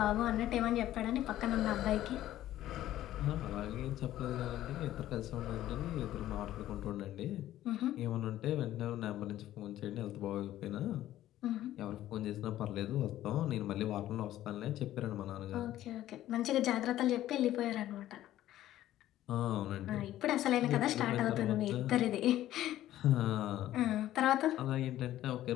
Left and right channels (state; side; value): quieter; right; 13.6 dB